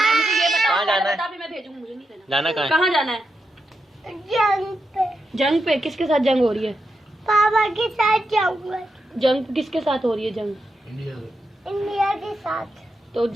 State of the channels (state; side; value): normal; both; correlation 0.86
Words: है मुझे ये बताओ। कहाँ जाना है? बता भी मैं भेजूंगी, मुझे नहीं देना। जाना कहाँ है? कहाँ जाना है? जंग पे। जंग पे? किसके साथ जंग हो रही है? पापा के साथ जाऊंगा। जंग किसके साथ हो रही है? जंग इंडिया के साथ। तो